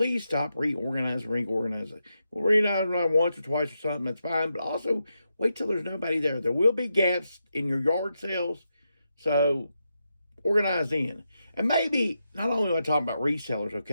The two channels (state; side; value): inverted; both; correlation -0.85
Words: stop reorganizing. We'll reorganize once or twice or something, that's fine. But also wait till there's nobody there. There will be gaps in your yard sales. So organize in. And maybe not only am I talking about resellers,